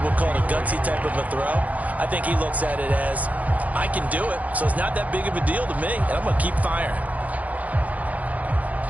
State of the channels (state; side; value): late; left; 0.073 ms